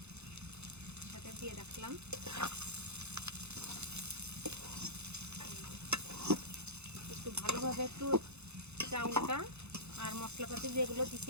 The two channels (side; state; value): left; late; 0.81 ms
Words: সাথে দিয়ে রাখলাম। একটু ভালোভাবে একটু চাউলটা আর মশলাপাতি যেগুলো